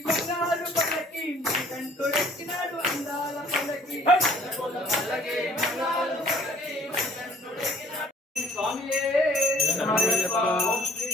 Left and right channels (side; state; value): both; normal; correlation 0.54